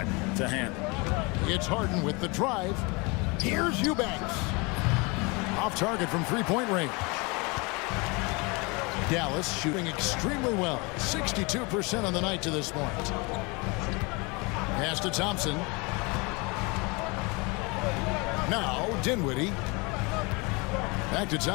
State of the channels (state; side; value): quieter; right; 27.9 dB